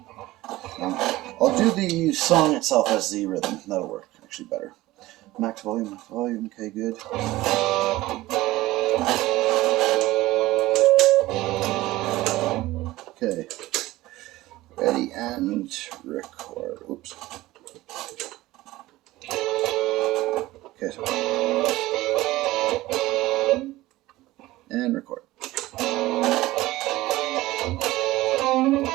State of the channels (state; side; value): quieter; left; 17.7 dB